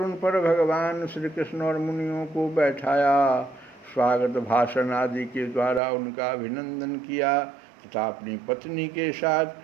पर भगवान श्री कृष्ण और मुनियों को बैठाया, स्वागत भाषण आदि के द्वारा उनका अभिनंदन किया तथा अपनी पत्नी के साथ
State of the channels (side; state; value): left; drops out; at 5.8 s